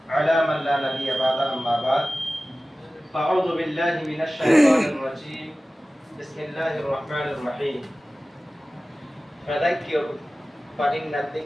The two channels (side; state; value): both; normal; correlation 0.96